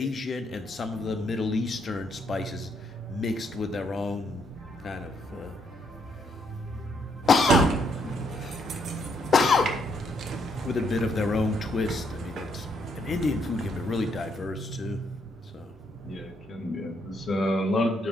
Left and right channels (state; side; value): normal; both; correlation 0.73